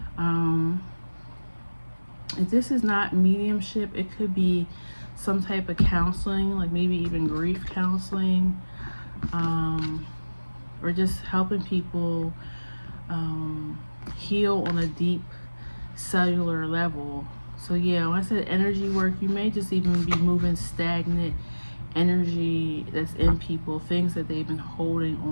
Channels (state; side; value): inverted; both; correlation -1.00